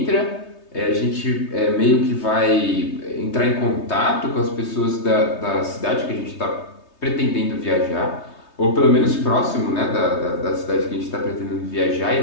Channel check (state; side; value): late; right; 3.2 ms